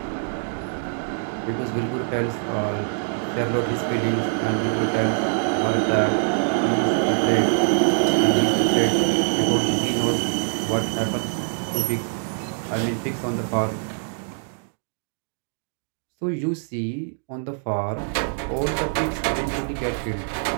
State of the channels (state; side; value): silent; left; 63 dB below the other